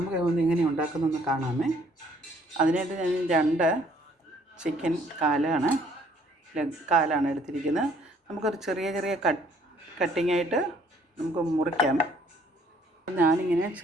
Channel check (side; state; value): both; normal; correlation 0.62